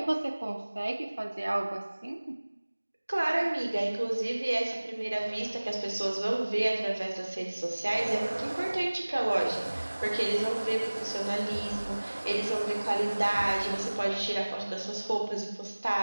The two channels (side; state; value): both; inverted; correlation -1.00